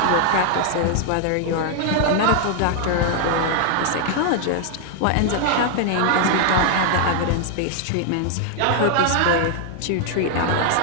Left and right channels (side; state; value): both; different; correlation 0.00